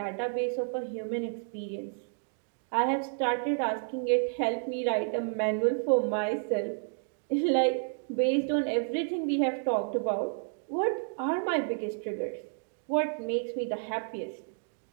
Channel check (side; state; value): left; silent; digital silence